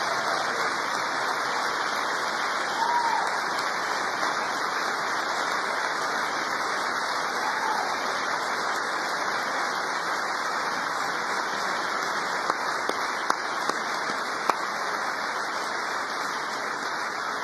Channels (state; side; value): identical; both; correlation 1.00